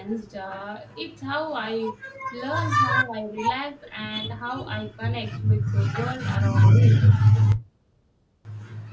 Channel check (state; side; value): identical; both; correlation 1.00